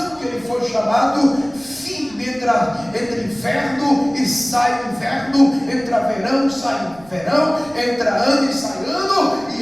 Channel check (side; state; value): right; noise; rumble, 24 dB below the sound